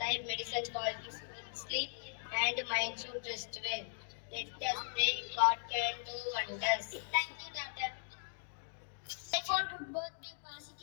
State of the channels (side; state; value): right; silent; digital silence